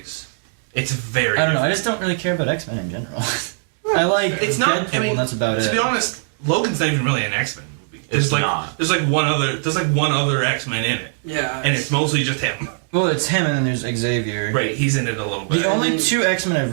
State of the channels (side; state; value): left; silent; digital silence